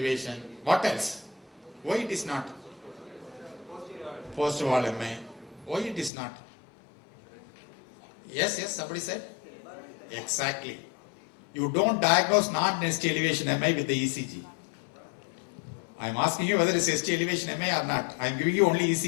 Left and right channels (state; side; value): drops out; right; at 6.1 s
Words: What else? Why it is not? Post wall MI. Why it is not? Yes, somebody said? Exactly. You don't diagnose non-ST elevation MI with the ECG. I am asking you whether it's ST elevation MI or not. I am giving you only